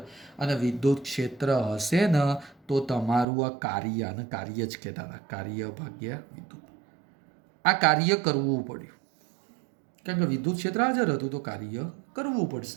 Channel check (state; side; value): drops out; left; at 3.2 s